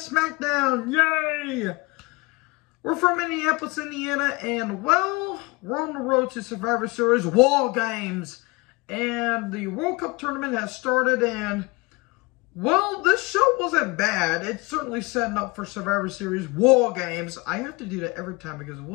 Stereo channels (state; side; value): quieter; right; 25.7 dB